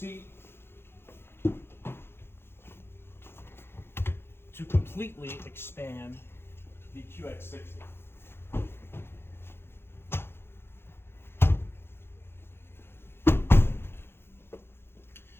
to completely expand the QX60.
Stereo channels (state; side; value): late; right; 0.11 ms